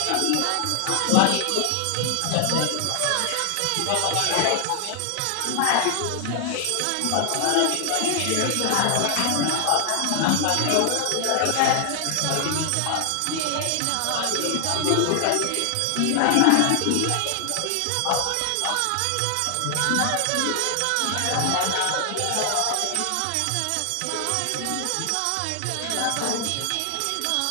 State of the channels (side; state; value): both; different; correlation 0.00